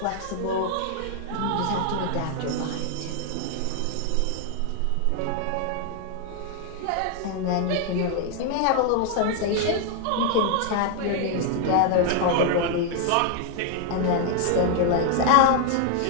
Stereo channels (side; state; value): both; different; correlation 0.00